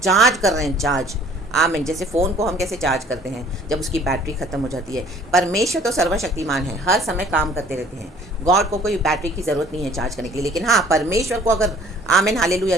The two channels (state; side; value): normal; both; correlation 0.54